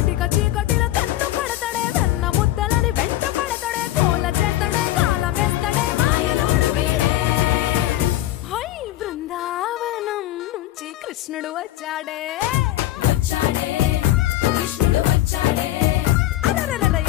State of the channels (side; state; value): right; quieter; 14.9 dB